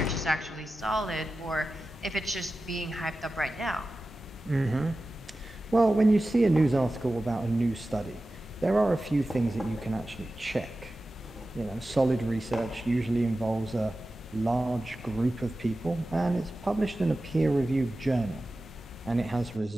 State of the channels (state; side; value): normal; both; correlation 0.94